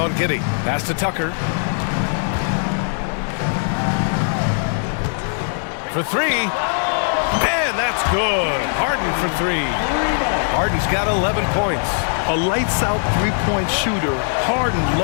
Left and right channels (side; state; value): right; silent; 63 dB below the other